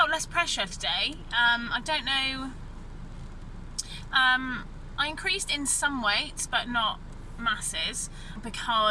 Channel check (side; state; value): both; identical; correlation 1.00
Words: less pressure today. I don't know. I increased in some weights, but not masses,